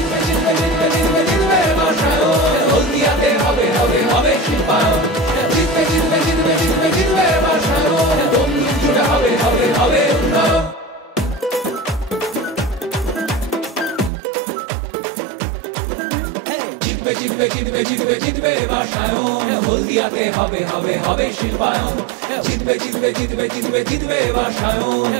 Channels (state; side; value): drops out; left; at 14.1 s